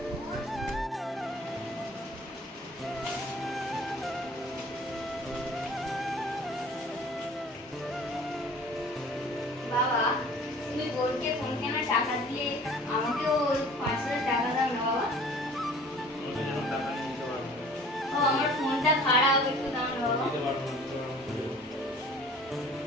বাবা তুমি বোনকে ফোন কেনার টাকা দিয়ে আমাকেও 5,000 টাকা দাও না বাবা। ও আমার ফোনটা খারাপ, একটু দাও না বাবা।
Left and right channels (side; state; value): both; normal; correlation 0.48